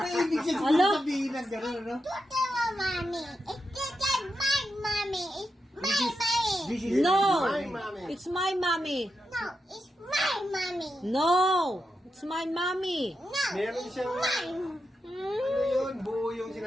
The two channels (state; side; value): normal; both; correlation 0.87